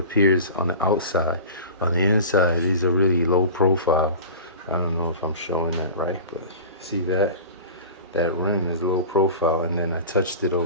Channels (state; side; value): inverted; both; correlation -0.36